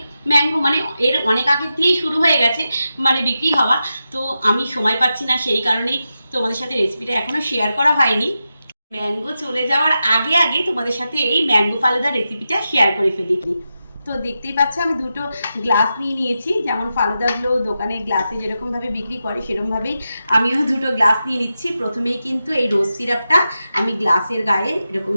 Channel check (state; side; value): inverted; both; correlation -0.89